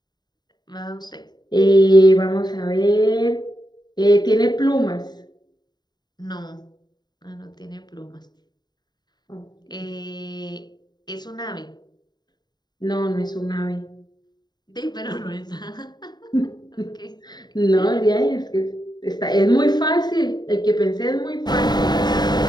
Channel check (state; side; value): late; right; 0.20 ms